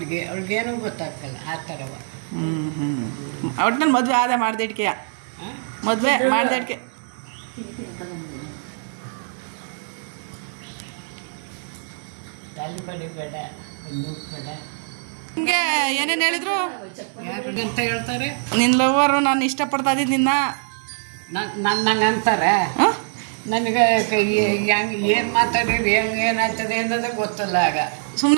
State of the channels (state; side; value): silent; left; 63 dB below the other